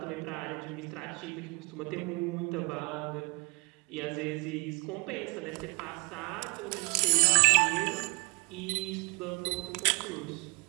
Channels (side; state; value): left; quieter; 28.0 dB